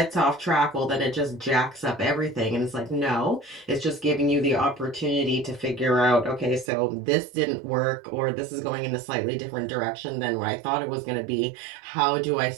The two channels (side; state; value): left; drops out; at 6.7 s